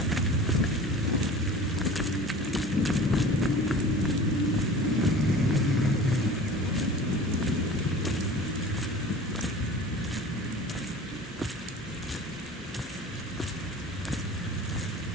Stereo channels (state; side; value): normal; both; correlation 0.40